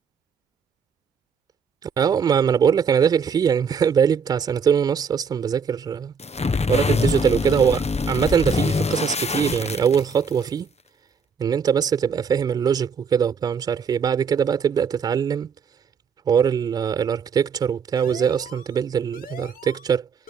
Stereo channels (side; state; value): left; quieter; 5.6 dB